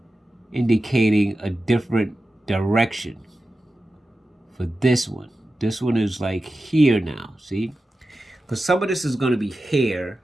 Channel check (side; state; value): both; normal; correlation 0.93